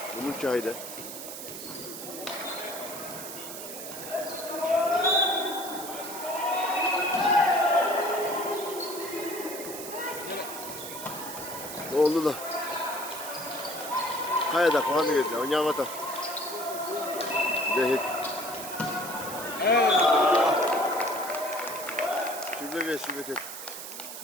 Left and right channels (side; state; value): right; noise; hiss, 9 dB below the sound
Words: Bunun çayda. Oldu da. Kayada puanı verdi. Oynayamadı. Dehit. Sübet et.